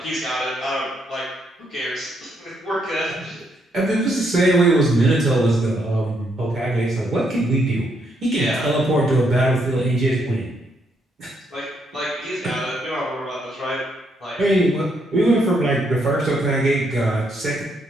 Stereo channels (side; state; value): both; normal; correlation 0.75